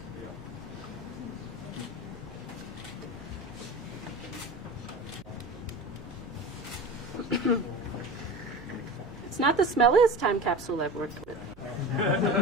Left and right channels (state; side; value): noise; right; hum, 22 dB below the sound